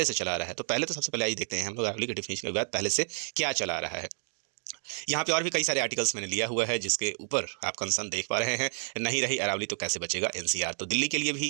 से चला आ रहा है। तो पहले तो सबसे पहले आइए देखते हैं हम लोग अरावली के डेफिनेशन का विवाद पहले से क्या चला आ रहा है। यहाँ पे और भी कई सारे आर्टिकल्स मैंने लिया हुआ है जिसके ऊपर आप कंसर्न देख पा रहे हैं। नहीं रही अरावली तो कैसे बचेगा एनसीआर, तो दिल्ली के लिए भी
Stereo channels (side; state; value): left; silent; digital silence